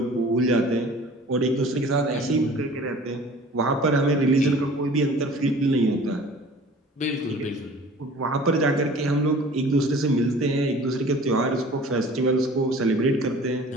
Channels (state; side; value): normal; both; correlation 0.46